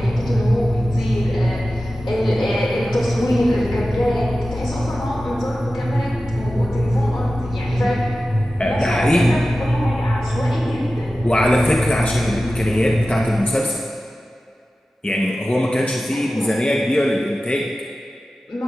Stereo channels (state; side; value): normal; both; correlation 0.94